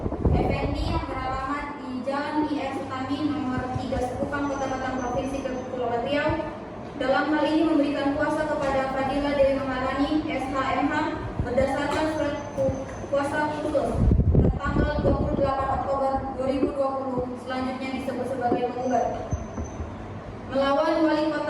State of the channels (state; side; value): identical; both; correlation 1.00